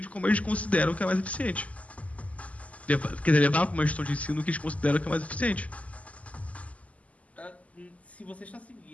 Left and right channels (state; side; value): late; right; 0.068 ms